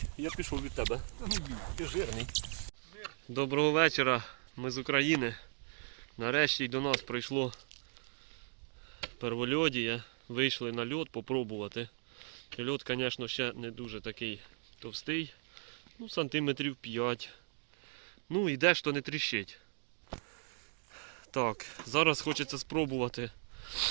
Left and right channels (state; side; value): silent; left; 53 dB below the other